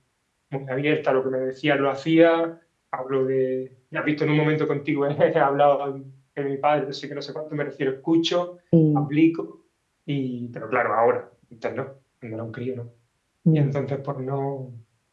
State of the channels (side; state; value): both; identical; correlation 1.00